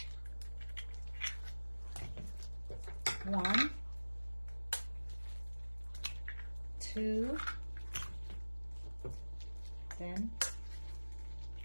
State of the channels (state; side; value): inverted; both; correlation -1.00